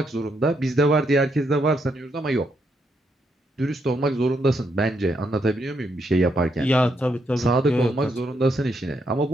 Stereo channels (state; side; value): normal; both; correlation 0.78